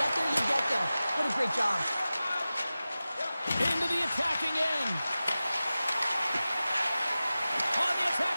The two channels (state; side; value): inverted; both; correlation -0.96